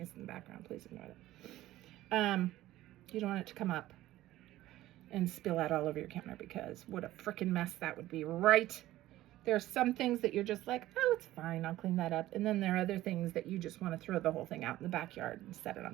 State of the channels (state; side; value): quieter; left; 15.4 dB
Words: is in the background. Please ignore that. You don't want it to come up and spill out all over your counter, because what a freaking mess that would be, right? There are some things that you're just like, oh, it's fine, I'll clean that up. And then there are other things that you just want to throw the whole thing out in the backyard and set it